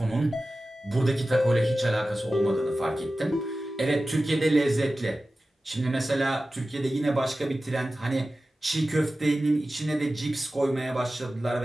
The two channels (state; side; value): normal; both; correlation 0.95